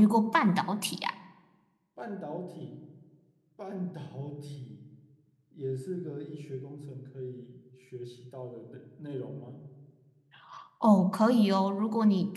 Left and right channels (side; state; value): both; identical; correlation 1.00